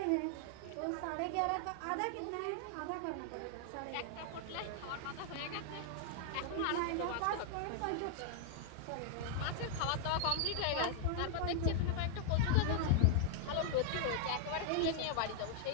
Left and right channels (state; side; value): different; both; correlation 0.00